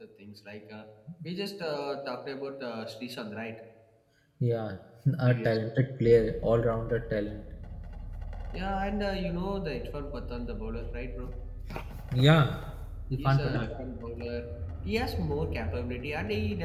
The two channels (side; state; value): both; identical; correlation 1.00